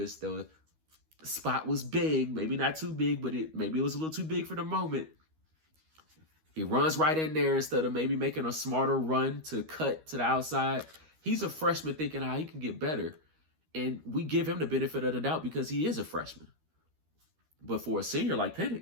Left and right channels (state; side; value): late; left; 13 ms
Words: The spot was big, maybe not too big, but maybe it was a little too big for the moment. He runs right in there instead of maybe making a smarter run to cut to the outside. He's a freshman thinking how he can get better. And we give him the benefit of the doubt because he is a freshman. But for a senior like